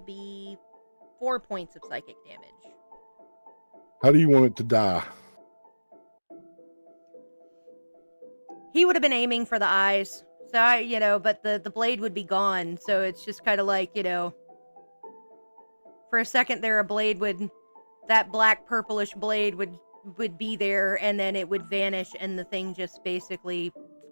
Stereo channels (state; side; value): inverted; both; correlation -1.00